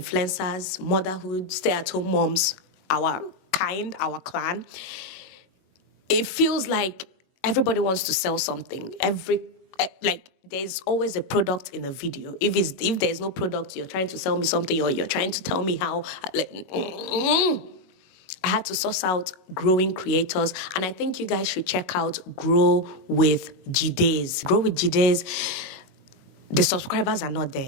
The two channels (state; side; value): late; right; 22 ms